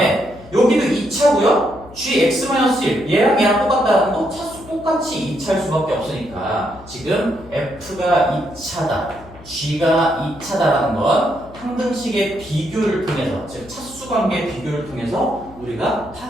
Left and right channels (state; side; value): noise; left; hum, 20 dB below the sound